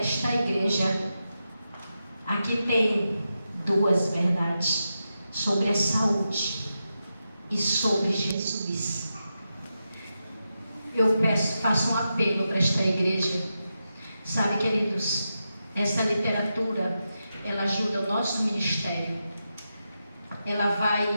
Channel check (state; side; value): inverted; both; correlation -0.88